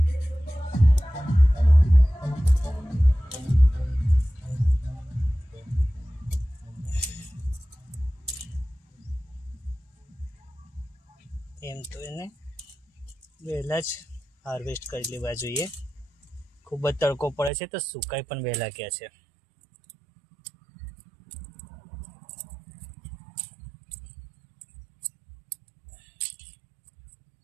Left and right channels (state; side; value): drops out; left; at 17.5 s